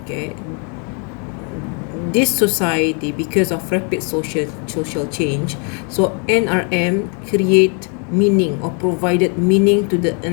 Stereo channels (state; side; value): quieter; right; 37.7 dB